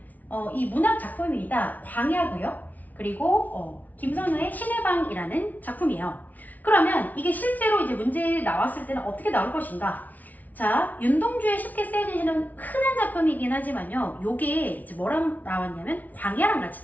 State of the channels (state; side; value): late; right; 0.077 ms